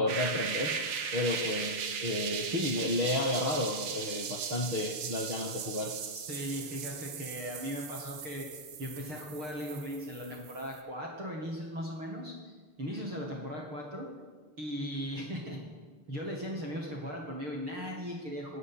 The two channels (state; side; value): late; left; 6.7 ms